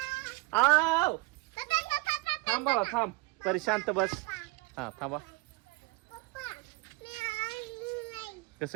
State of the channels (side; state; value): left; quieter; 22.0 dB